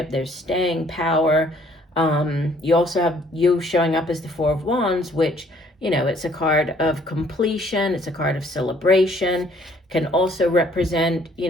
There's staying power. You also have you showing up as the Four of Wands, which, it's a card of completion. It's a card of celebration. Can also represent,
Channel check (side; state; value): both; normal; correlation 0.61